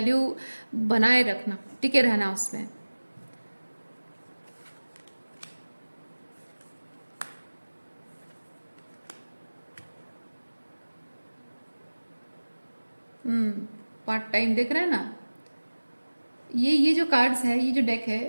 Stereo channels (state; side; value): inverted; both; correlation -1.00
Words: बनाए रखना, टिके रहना उसमें। पार्ट टाइम देख रहे हैं ना, ये जो कार्ड्स है, ये जो डेक